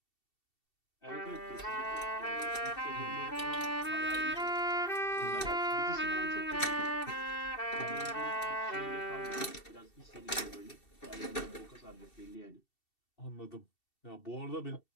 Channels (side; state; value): right; late; 2.7 ms